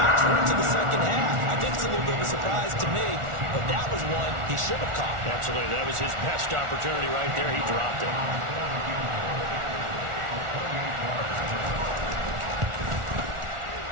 We're into the second half. I think it's a little bit of a surprise to me, but that was one he should have caught. Absolutely. That was his best opportunity right there. He dropped it.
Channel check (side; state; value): left; late; 1.4 ms